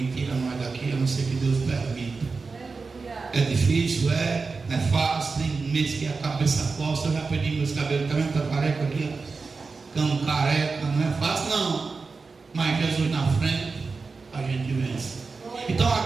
tira nós daqui, a não ser que Deus permita. É difícil, não é fácil, tem mês que a cabeça costa, eu já perdi meus cabelos, tá vendo? Tá careca aqui, ó. Cão careca, não é fácil não. Mas Jesus na frente, a gente vence. Então a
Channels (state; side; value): quieter; left; 4.4 dB